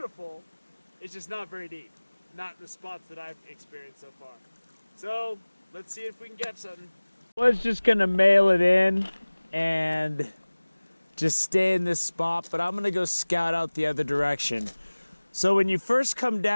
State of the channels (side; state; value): both; inverted; correlation -1.00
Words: it's just not very deep. Not in the spots that I've experienced so far. So, let's see if we can get something. I was just gonna mail it in and just stay in this spot, but I'm gonna go scout out the other direction. So when you first come